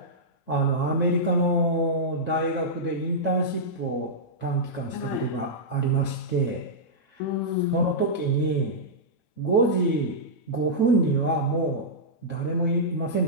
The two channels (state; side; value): late; right; 9.1 ms